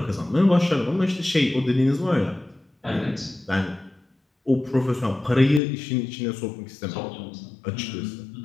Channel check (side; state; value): right; drops out; at 5.6 s